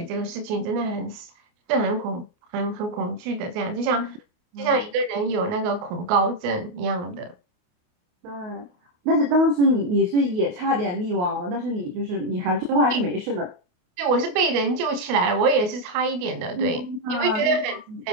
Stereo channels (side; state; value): left; late; 28 ms